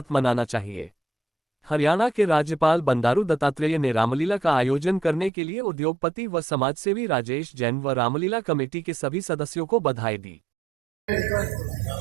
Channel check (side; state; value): left; drops out; at 5.3 s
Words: मनाना चाहिए। हरियाणा के राज्यपाल बंडारू दत्तात्रेय ने रामलीला का आयोजन करने के लिए उद्योगपति व समाजसेवी राजेश जैन व रामलीला कमेटी के सभी सदस्यों को बधाई दी।